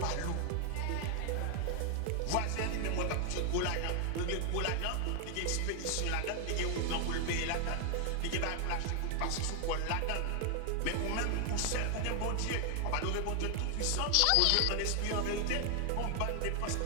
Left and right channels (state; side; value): different; both; correlation 0.00